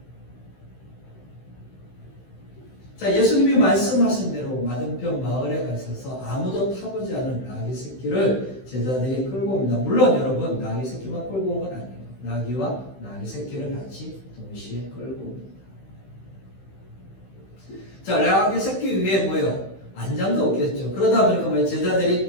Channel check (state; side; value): late; right; 16 ms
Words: 자, 예수님이 말씀하신 대로 맞은편 마을에 가셔서 아무도 타보지 않은 나귀 새끼를 제자들이 끌고 옵니다. 물론 여러분 나귀 새끼만 끌고 온 건 아니에요. 나귀와 나귀 새끼를 같이 동시에 끌고 옵니다. 자, 나귀 새끼 위에 안장도 없겠죠. 그러다 보니까